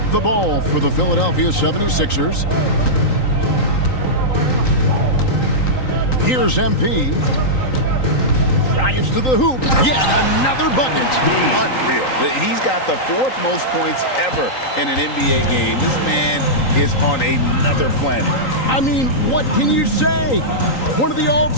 the ball for the Philadelphia 76ers. Here's MP. Drives to the hoop. Yet another bucket. Unreal. He's got the 4th most points ever in an NBA game. This man is on another planet. I mean, what can you say? One of the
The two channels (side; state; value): right; late; 3.9 ms